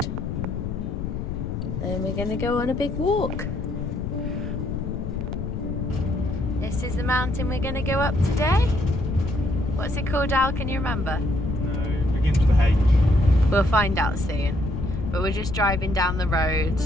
And we're going to go on a big walk. This is the mountain we're going to go up today. What's it called, Al? Can you remember? No, it begins with a H. We'll find out soon. But we're just driving down the road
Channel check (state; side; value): noise; left; rumble, 4 dB below the sound